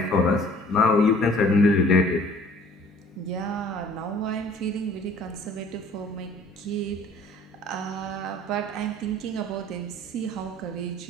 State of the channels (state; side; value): normal; both; correlation 0.52